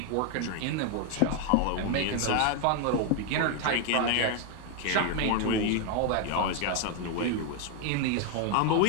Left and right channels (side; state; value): both; different; correlation 0.01